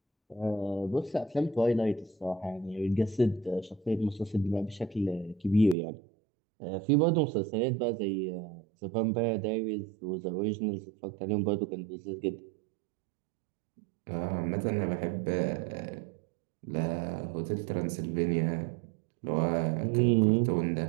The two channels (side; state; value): left; drops out; at 5.8 s